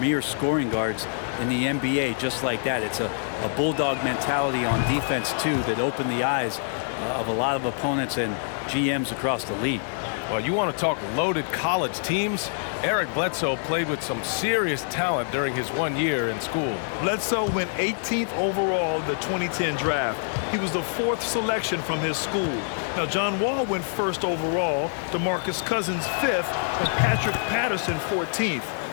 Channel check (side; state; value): right; silent; digital silence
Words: scoring guards in the NBA just like that. It's a bulldog mentality on defense, too, that opened the eyes of a lot of opponents and GMs across the league. Well, you want to talk loaded college teams? Eric Bledsoe played with some serious talent during his 1 year in school. Bledsoe went 18th overall in the 2010 draft. He was the 4th selection from his school. Now, John Wall went 1st overall, DeMarcus Cousins 5th, and Patrick Patterson 14th.